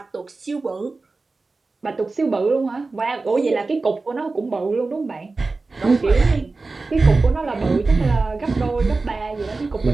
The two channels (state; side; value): quieter; left; 3.7 dB